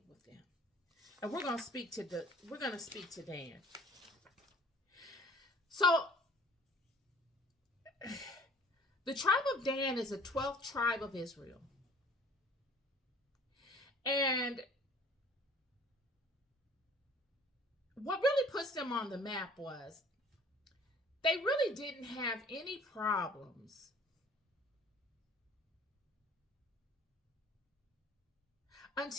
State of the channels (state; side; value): normal; both; correlation 0.51